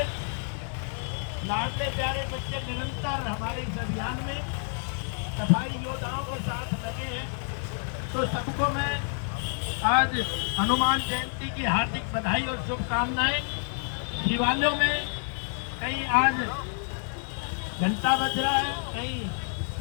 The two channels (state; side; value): silent; right; 56 dB below the other